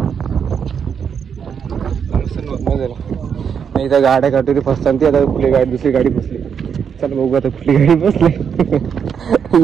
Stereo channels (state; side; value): quieter; left; 7.2 dB